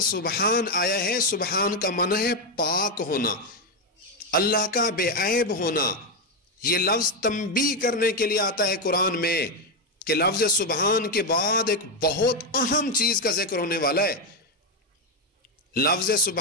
سبحان آیا ہے، سبحان کا معنی ہے پاک ہونا، اللہ کا بے عیب ہونا۔ یہ لفظ تنبیہ کرنے کے لیے آتا ہے قرآن میں کہ لفظ سبحان کے بعد ایک بہت اہم چیز کا ذکر ہونے والا ہے۔ لفظ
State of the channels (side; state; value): both; normal; correlation 0.06